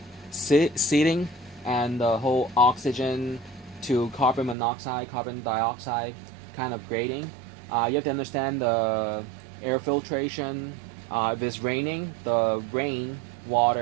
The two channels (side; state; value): left; drops out; at 4.5 s